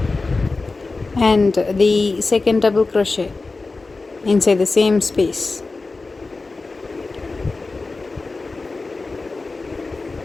and the second double crochet inside the same space,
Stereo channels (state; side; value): quieter; right; 3.6 dB